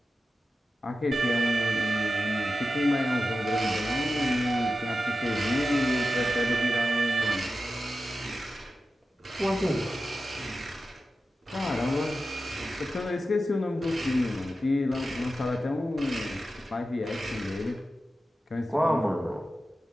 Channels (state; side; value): normal; both; correlation 0.92